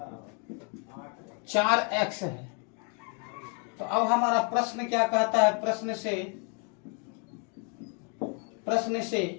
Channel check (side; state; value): right; quieter; 38.9 dB